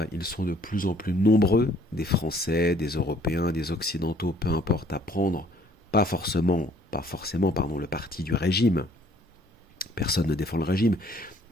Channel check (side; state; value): both; normal; correlation 0.60